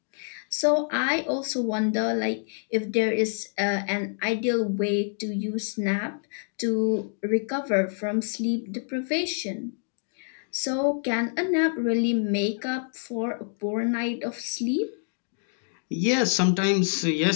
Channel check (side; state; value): right; silent; 60 dB below the other